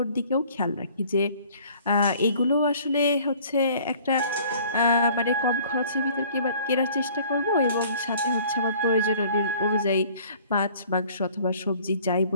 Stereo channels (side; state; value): both; inverted; correlation -0.52